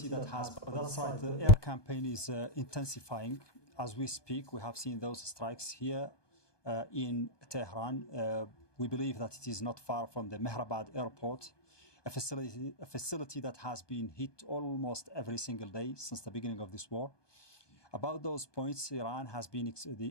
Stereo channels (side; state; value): right; late; 1.2 ms